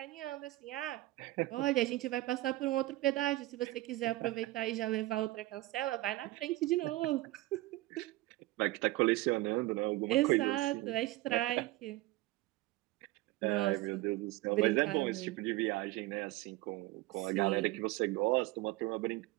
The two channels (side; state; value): left; quieter; 18.5 dB